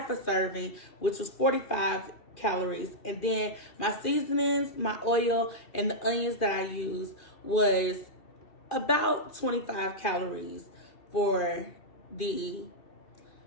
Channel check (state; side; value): late; right; 2.4 ms